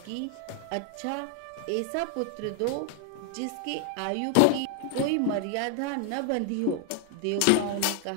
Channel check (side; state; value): both; different; correlation 0.00